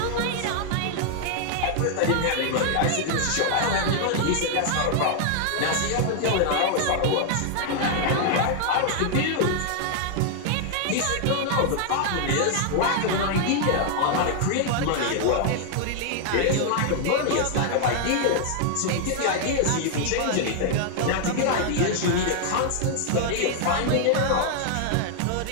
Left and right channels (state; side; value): different; both; correlation 0.00